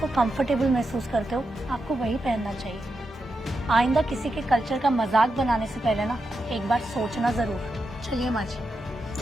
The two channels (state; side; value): normal; both; correlation 0.87